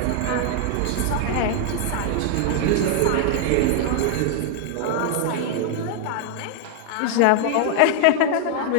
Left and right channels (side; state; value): both; different; correlation 0.00